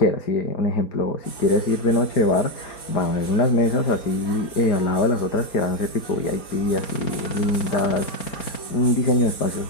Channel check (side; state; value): right; late; 4.3 ms